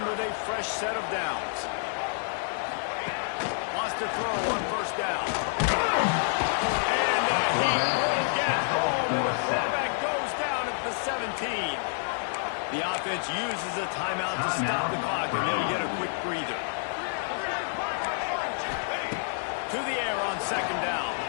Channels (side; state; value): right; silent; digital silence